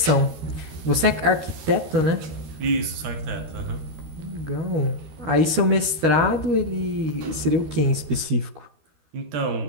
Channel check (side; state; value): left; late; 13 ms